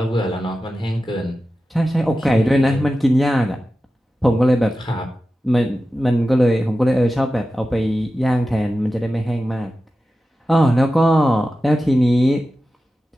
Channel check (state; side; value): normal; both; correlation 0.93